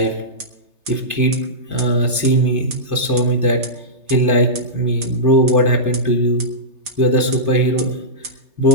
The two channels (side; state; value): left; late; 3.3 ms